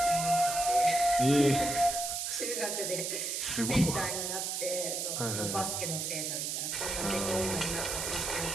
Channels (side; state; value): right; noise; hiss, 2 dB below the sound